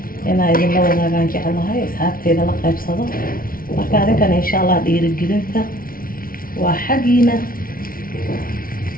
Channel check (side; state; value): right; late; 0.42 ms